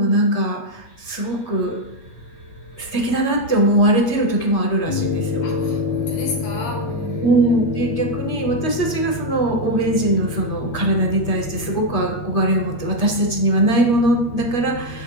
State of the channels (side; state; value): right; late; 8.5 ms